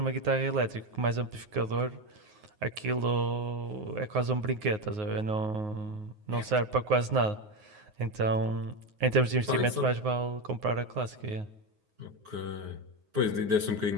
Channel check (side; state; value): left; late; 9.5 ms